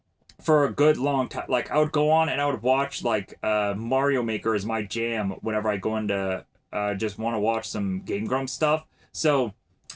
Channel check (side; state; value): both; identical; correlation 1.00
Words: for a good long time. Like I would go on and I would watch like Mario Maker is my jam whenever I go into just want to watch some Game Grumps stuff. So